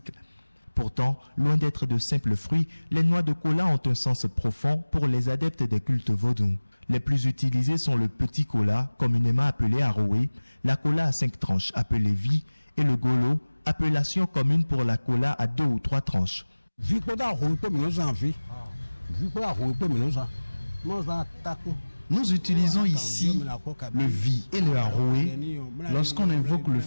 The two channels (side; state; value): both; inverted; correlation -1.00